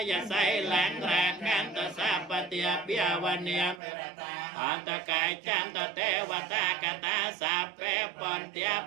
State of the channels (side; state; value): left; drops out; at 3.8 s